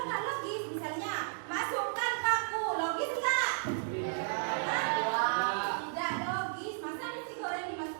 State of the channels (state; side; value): silent; left; digital silence